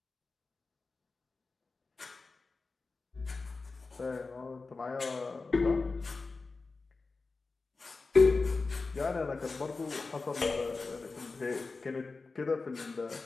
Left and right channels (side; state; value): right; quieter; 3.9 dB